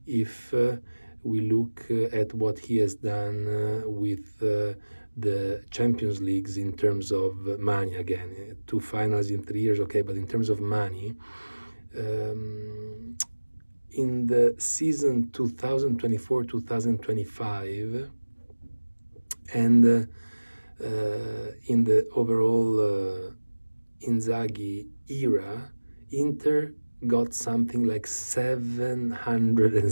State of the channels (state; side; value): inverted; both; correlation -1.00